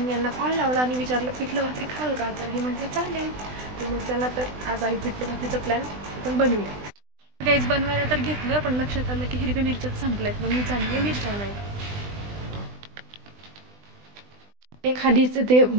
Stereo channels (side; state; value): left; late; 20 ms